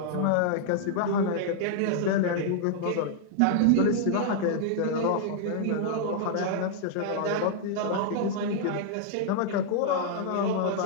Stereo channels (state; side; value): different; both; correlation -0.01